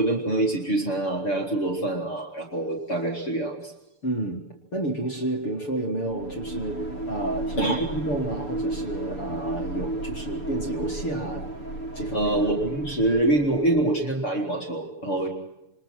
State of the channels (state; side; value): late; right; 6.9 ms